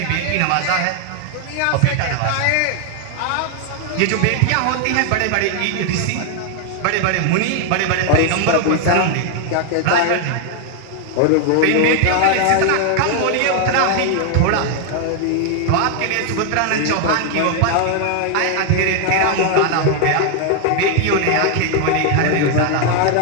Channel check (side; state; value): both; different; correlation 0.00